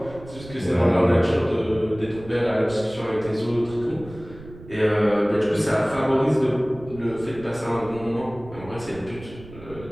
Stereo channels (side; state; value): right; noise; rumble, 17 dB below the sound